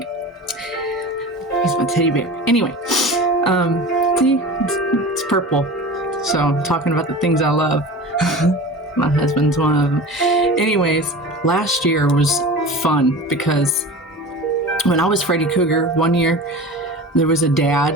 He's my teddy bear. Anyway, see, it's purple. So I'm talking about the things I love. My husband's one of them. Anyways, last year was fun because when I was Freddy Krueger, one year, there was a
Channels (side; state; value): both; normal; correlation 0.34